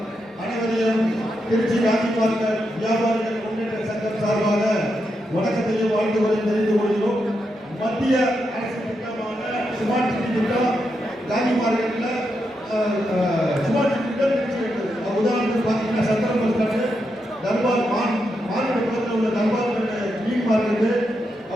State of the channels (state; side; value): normal; both; correlation 0.84